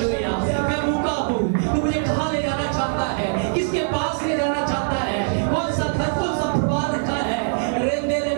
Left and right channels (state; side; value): silent; left; 64 dB below the other